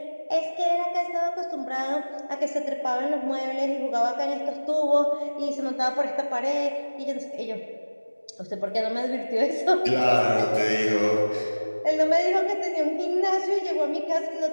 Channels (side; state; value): both; inverted; correlation -1.00